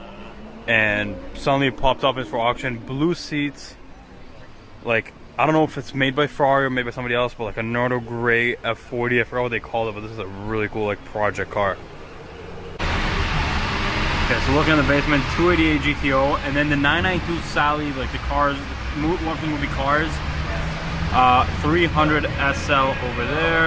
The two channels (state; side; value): identical; both; correlation 1.00